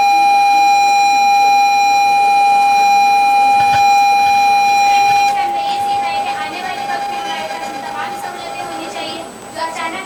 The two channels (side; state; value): both; identical; correlation 1.00